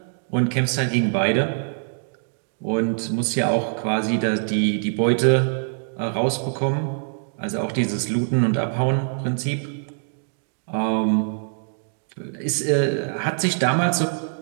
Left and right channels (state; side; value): silent; left; digital silence